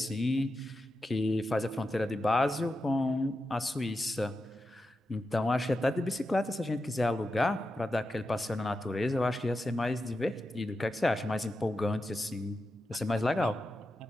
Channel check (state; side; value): normal; both; correlation 0.89